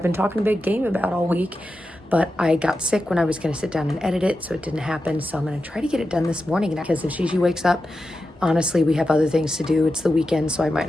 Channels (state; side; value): normal; both; correlation 0.91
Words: been talking a big game about all week, but I got sick when I was going to sit down and edit it, so it didn't happen. So I'm going to try to get it done this morning because if Gigi wakes up, honestly, we have other things to do. It's the weekend, so I might